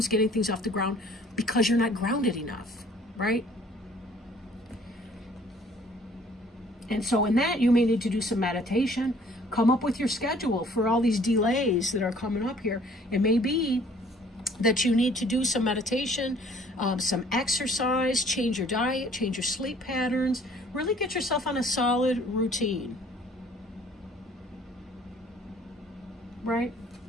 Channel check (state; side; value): normal; both; correlation 0.56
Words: getting things off the ground because you're not grounded enough, right? And so in that, you may need to do some meditation, come up with your schedule for all these delays that are coming up here. It may be that you need to do some meditation, some exercise, change your diet, change your sleep patterns, really get yourself on a solid routine, right?